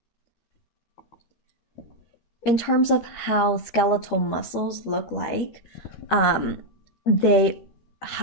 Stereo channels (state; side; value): late; right; 13 ms